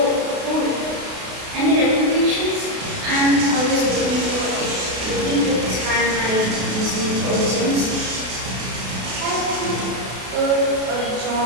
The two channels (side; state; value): left; late; 32 ms